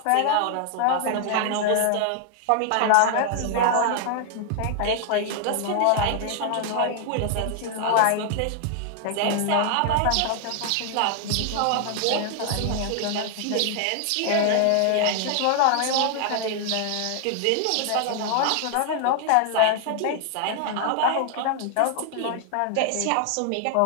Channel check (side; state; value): both; different; correlation 0.00